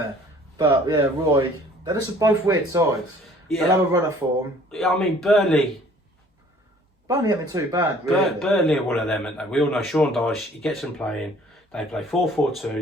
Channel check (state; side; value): normal; both; correlation 0.54